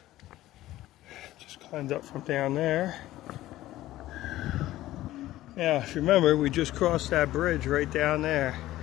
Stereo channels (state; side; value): quieter; right; 15.4 dB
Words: Just climbed up from down there. Now, if you remember, we just crossed that bridge right down there.